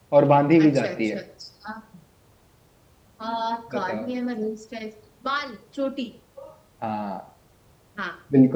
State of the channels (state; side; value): identical; both; correlation 1.00